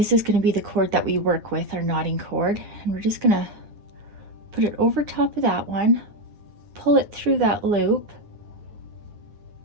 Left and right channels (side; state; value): left; late; 9.7 ms